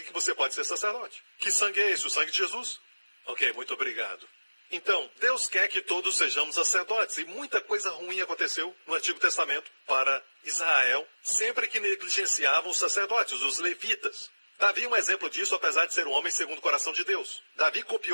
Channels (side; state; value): both; inverted; correlation -1.00